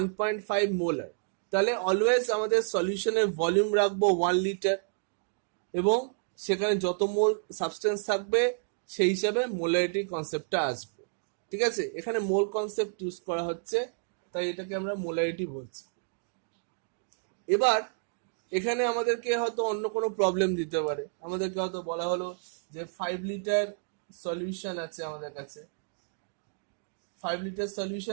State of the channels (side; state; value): left; silent; digital silence